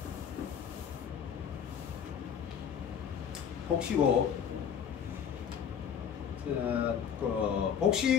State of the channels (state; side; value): quieter; right; 8.0 dB